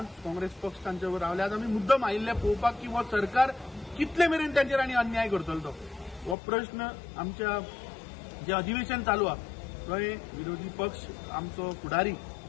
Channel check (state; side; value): drops out; right; at 6.4 s